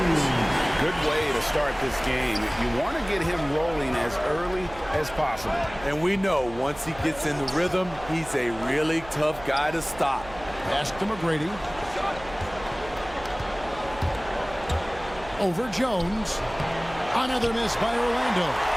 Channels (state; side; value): noise; right; hum, 17 dB below the sound